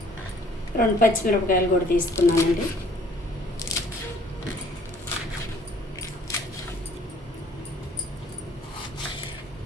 రెండు పచ్చిమిరపకాయలు కూడా తీసుకున్నానండి.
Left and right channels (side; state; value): both; normal; correlation 0.57